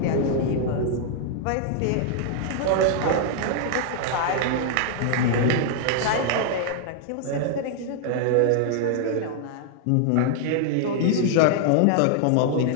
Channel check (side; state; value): both; different; correlation 0.00